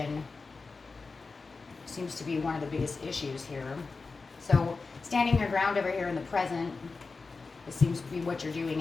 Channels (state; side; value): quieter; right; 4.2 dB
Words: seems to be one of the biggest issues here. So standing your ground over here in the present, it seems to be what you're doing